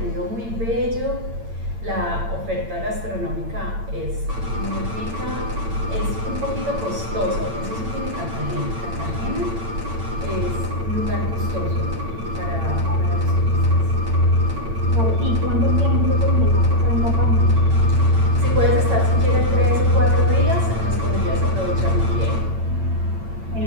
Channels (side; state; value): left; late; 8.8 ms